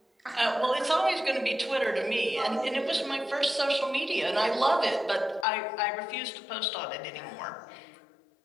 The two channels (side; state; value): right; drops out; at 5.5 s